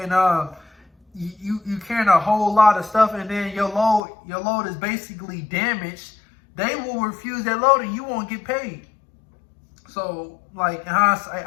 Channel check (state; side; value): drops out; right; at 4.0 s